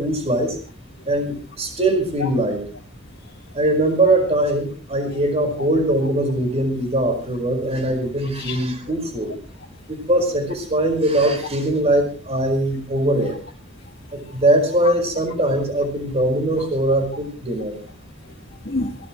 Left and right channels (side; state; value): both; normal; correlation 0.34